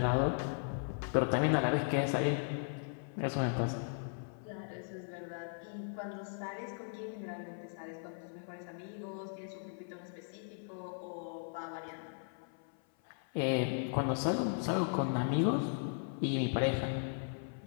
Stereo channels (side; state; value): right; silent; 53 dB below the other